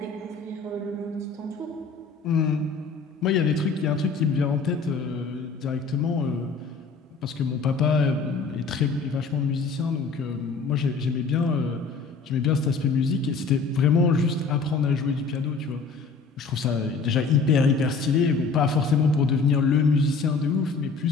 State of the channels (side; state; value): right; quieter; 4.6 dB